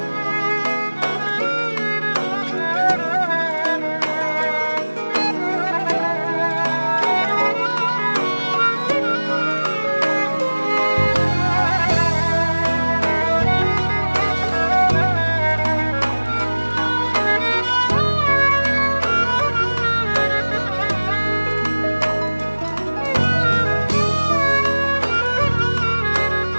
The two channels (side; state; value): both; inverted; correlation -1.00